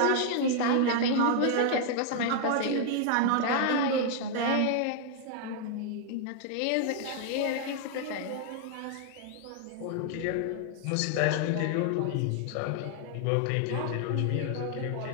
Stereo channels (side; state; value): both; different; correlation 0.00